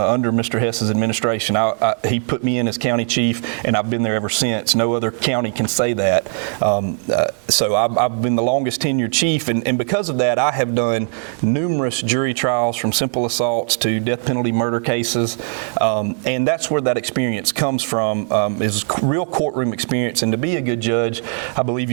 Mr. Hess's administration. He put me in as county chief, and I've been there ever since. No other county can say that. So I've been the longest tenured chief. And because of that, I have done numerous jury trials from simple assaults to death penalty murder cases. And that's where that experience comes from, is real courtroom experience. And to be a good judge, I believe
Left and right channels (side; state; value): left; silent; 58 dB below the other